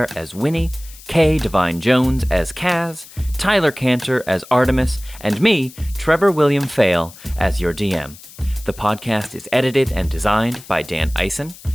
as Winnie, Kay Devine-Jones as Kaz, Tyler Kanter as Artemis, and me, Trevor William Fayle, as your DM. The podcast is edited and designed by Dan Ison.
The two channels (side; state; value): left; noise; hiss, 19 dB below the sound